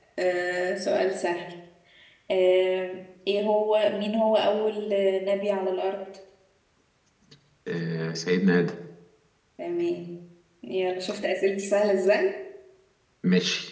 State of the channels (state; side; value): identical; both; correlation 1.00